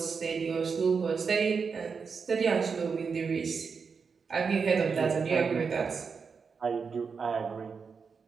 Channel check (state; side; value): quieter; left; 5.5 dB